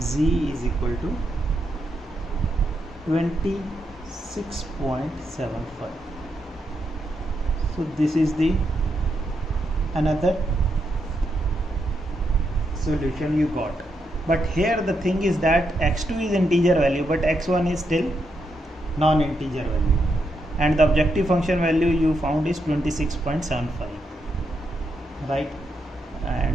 is equal to 26.75. so this is the another solution you got. But here the thing is that x2 is integer value but x1 is still non-integer value, and the objective function value you found is 26.75, right,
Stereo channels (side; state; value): both; normal; correlation 0.81